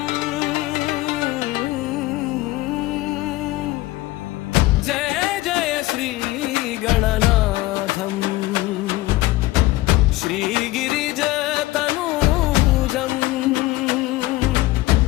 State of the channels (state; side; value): quieter; right; 18.5 dB